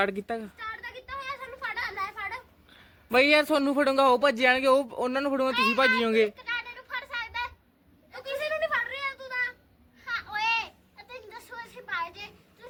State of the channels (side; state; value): both; identical; correlation 1.00